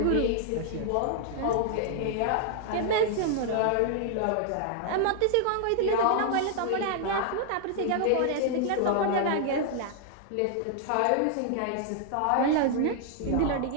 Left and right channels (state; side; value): different; both; correlation -0.01